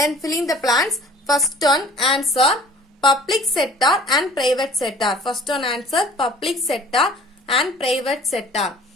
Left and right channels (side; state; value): both; normal; correlation 0.48